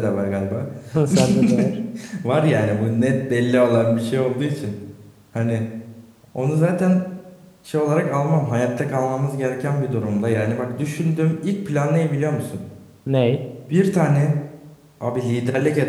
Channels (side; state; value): both; identical; correlation 1.00